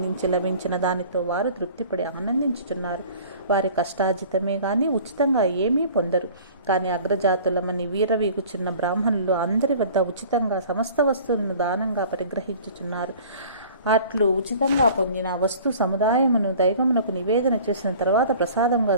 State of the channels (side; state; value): both; inverted; correlation -0.46